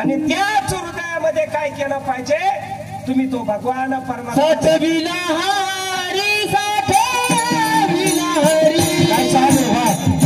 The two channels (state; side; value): identical; both; correlation 1.00